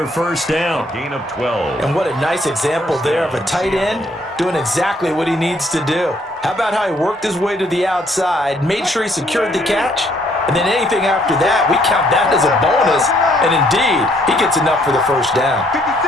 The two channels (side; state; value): both; normal; correlation 0.66